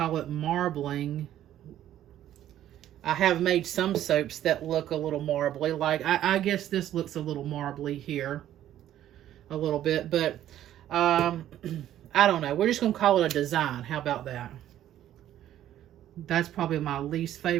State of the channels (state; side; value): quieter; left; 12.1 dB